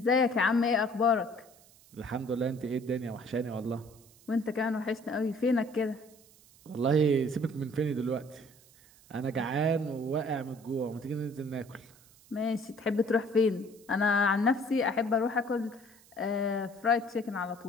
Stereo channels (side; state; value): right; noise; hiss, 26 dB below the sound